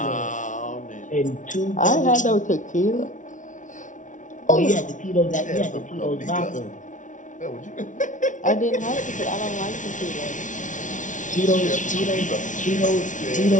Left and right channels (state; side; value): late; right; 0.37 ms